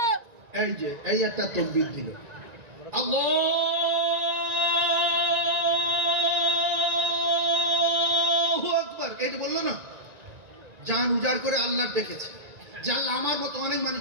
এই যে এই একটা তাকবীর দিল, আল্লাহু আকবার, এই যে বললো না, জান উজাড় করে আল্লাহ ডেকেছে। যে আল্লাহ আমার মতো অনেক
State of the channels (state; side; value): late; left; 1.9 ms